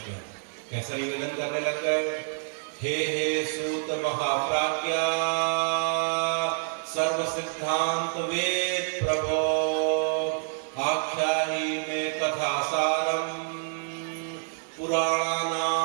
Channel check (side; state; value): left; silent; digital silence